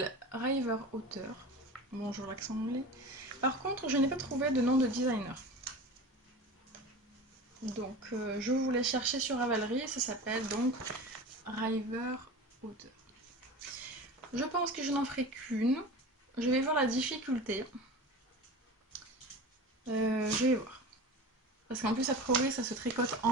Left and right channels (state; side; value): normal; both; correlation 0.33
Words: River Otter. Bonjour l'accent anglais. Par contre, je n'ai pas trouvé de nom de designer. Donc, je voulais chercher sur Ravelry. Ça s'appelle donc River Otter. Je pense que je n'en ferai qu'une. Je vais voir la difficulté. Je vais voir. Parce qu'en plus, a priori, ça se tricote